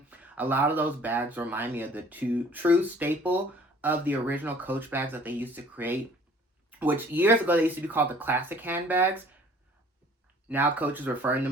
A lot of those bags remind me of the true staple of the original Coach bags that they used to create, which years ago they used to be called the classic handbags. Now Coach is referring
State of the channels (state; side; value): normal; both; correlation 0.53